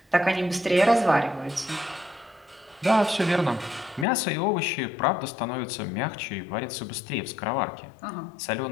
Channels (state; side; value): drops out; right; at 4.0 s